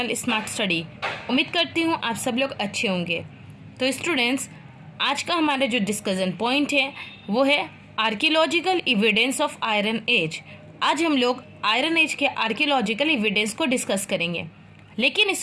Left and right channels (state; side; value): identical; both; correlation 1.00